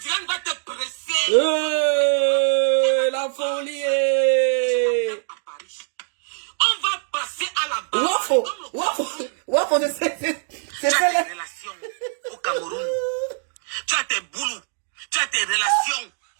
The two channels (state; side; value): silent; left; digital silence